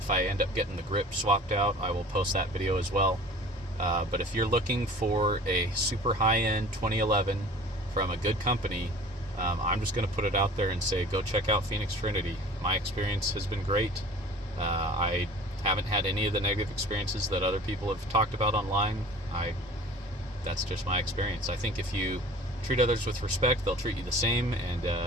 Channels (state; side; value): normal; both; correlation 0.44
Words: I end up getting the grip swapped out, I will post that video as well. But if you're looking for a super high-end 2011 from a good company, I'm just going to put it out there and say, go check out Phoenix Trinity. My experience has been great. I haven't had any of the negative experiences that other people have talked about online. That's just my experience. I think if you treat others with respect, they'll treat you the same, and